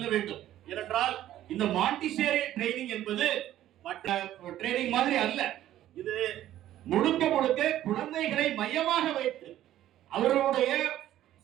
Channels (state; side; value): quieter; left; 12.9 dB